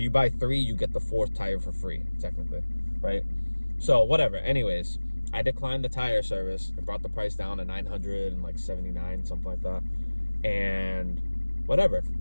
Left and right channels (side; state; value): both; inverted; correlation -1.00